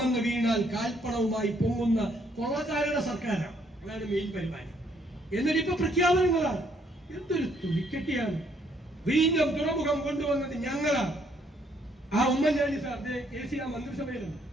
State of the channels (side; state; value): both; normal; correlation 0.69